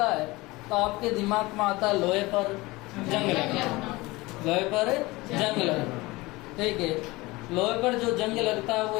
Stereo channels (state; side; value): quieter; right; 21.6 dB